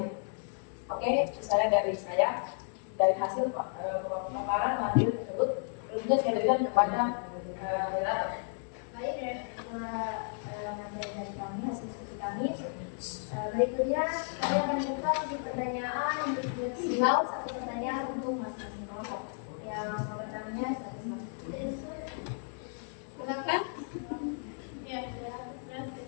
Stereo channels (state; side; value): silent; right; 56 dB below the other